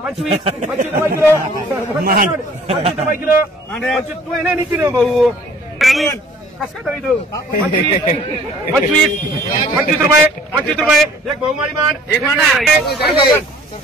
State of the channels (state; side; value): normal; both; correlation 0.53